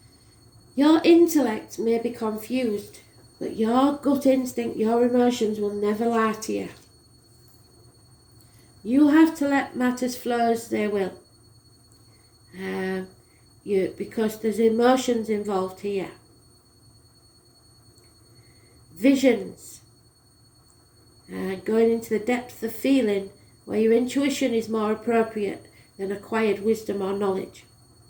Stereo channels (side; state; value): both; identical; correlation 1.00